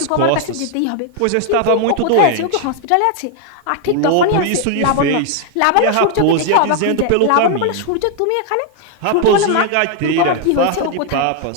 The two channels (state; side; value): different; both; correlation 0.00